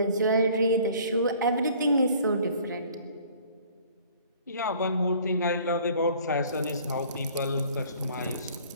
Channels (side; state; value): both; inverted; correlation -0.53